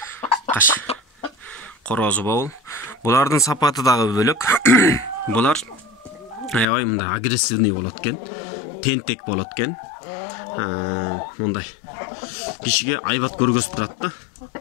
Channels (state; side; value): drops out; right; at 6.7 s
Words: Каш. Корозу бул. Булардын сапаты дагы бөлөк. Булар аябай мындай агрессивный болот экен. Тентек болот экен. Мындай кишиге айбат көргөзүп турат да.